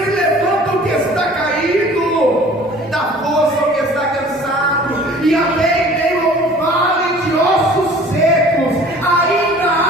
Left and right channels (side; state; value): both; normal; correlation 0.48